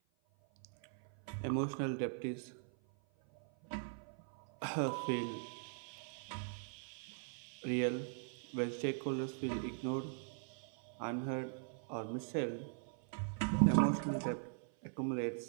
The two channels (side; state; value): left; silent; 51 dB below the other